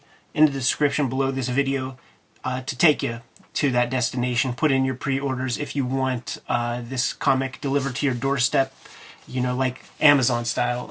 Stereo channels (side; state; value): both; identical; correlation 1.00